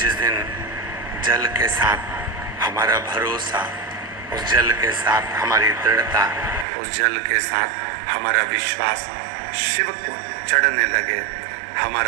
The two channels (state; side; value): drops out; left; at 6.7 s